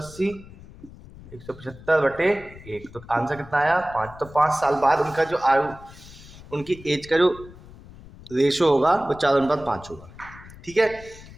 175 बटे 1, तो आंसर कितना आया 5। तो 5 साल बाद उनका जो आयु, उनकी एज का जो रेशो होगा वो 4:5 होगा। ठीक है,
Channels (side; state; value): left; noise; rumble, 19 dB below the sound